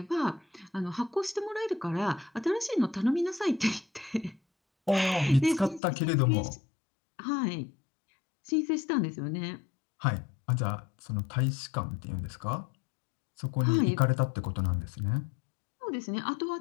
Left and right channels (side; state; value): right; drops out; at 5.8 s